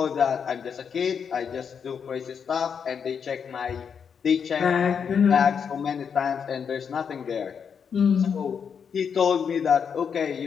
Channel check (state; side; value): quieter; right; 6.9 dB